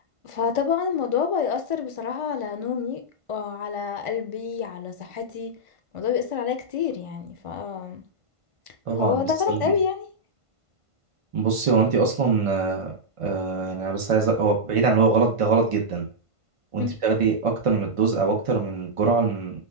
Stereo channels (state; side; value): late; left; 1.5 ms